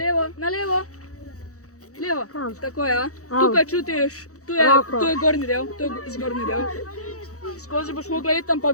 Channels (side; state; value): right; late; 0.65 ms